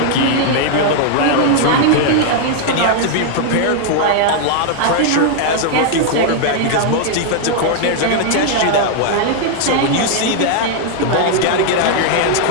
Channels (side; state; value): both; different; correlation 0.00